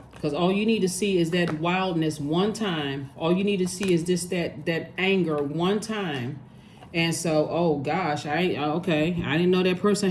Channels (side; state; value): both; identical; correlation 1.00